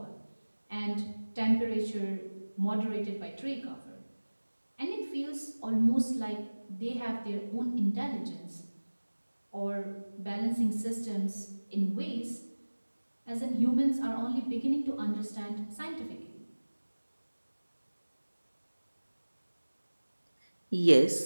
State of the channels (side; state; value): both; inverted; correlation -1.00